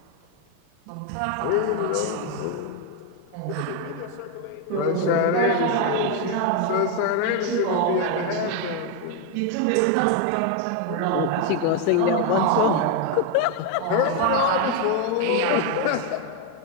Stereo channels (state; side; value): different; both; correlation 0.01